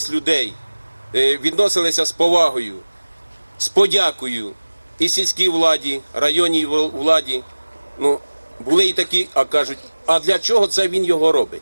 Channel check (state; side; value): inverted; both; correlation -1.00